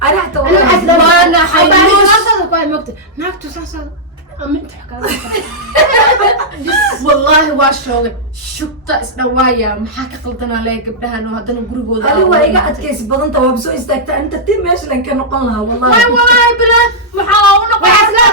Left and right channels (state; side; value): normal; both; correlation -0.09